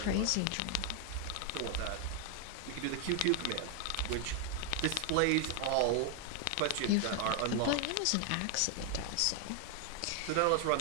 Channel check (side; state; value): both; different; correlation 0.01